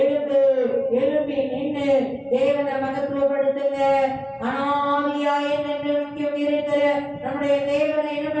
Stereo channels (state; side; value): identical; both; correlation 1.00